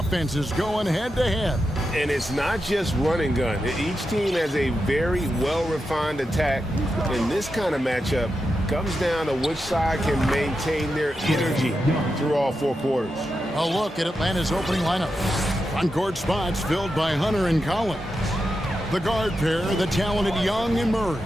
going head-to-head. And it's not just run and gun. Each team has a very well-refined attack. And this kind of matchup comes down to which side can maintain their energy through all 4 quarters. A look at Atlanta's opening lineup. On-court spots filled by Hunter and Collins. The guard pair, the talented Young and Murray.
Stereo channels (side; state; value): both; normal; correlation 0.88